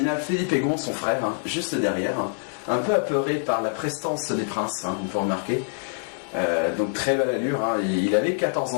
Philippe Egon, son frère, juste derrière, un peu apeuré par la prestance des princes, vous pouvez remarquer. Donc très belle allure, il avait 14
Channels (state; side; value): silent; right; digital silence